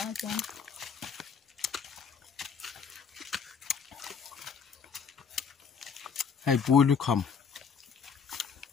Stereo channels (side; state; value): right; quieter; 6.3 dB